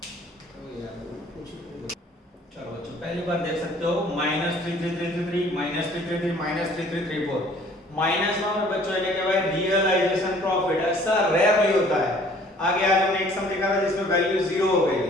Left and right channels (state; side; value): normal; both; correlation 0.55